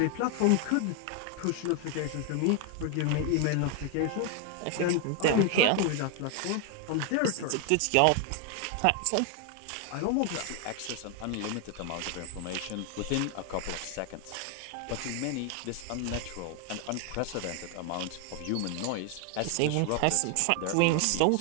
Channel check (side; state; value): both; different; correlation 0.01